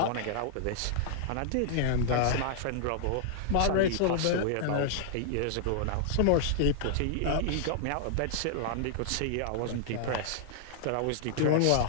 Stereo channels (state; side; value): different; both; correlation -0.01